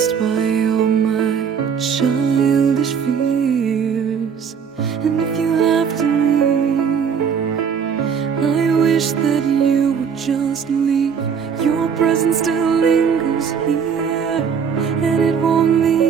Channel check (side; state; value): left; quieter; 6.9 dB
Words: by all my childish fears. And if you have to leave, I wish that you would just leave. Your presence still lingers here, and it won't